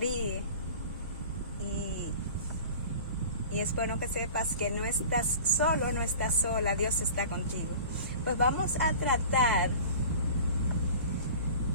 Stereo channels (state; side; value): inverted; both; correlation -0.40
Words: y es bueno que sepas que no estás solo, no estás sola, Dios está contigo. Pues vamos a tratar